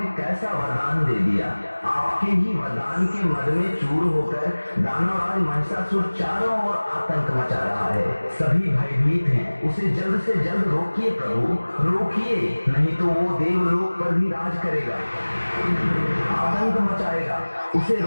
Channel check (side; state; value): both; inverted; correlation -1.00